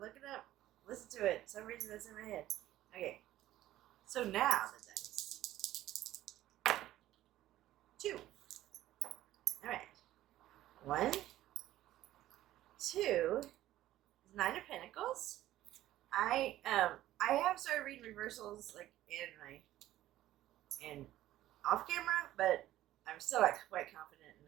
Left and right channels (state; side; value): quieter; left; 14.3 dB